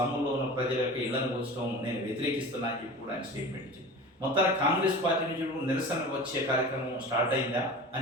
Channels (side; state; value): both; normal; correlation 0.35